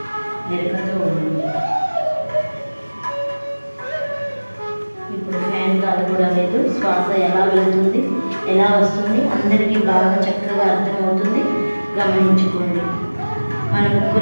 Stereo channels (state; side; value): inverted; both; correlation -1.00